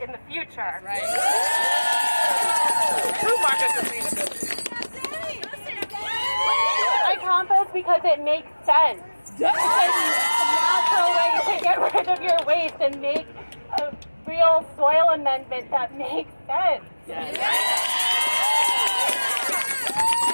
in the future. Right. True market sustainability. I compost because it makes sense. It's a natural way to get rid of your waste and make a real soil amendment that makes sense.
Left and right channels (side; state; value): both; inverted; correlation -1.00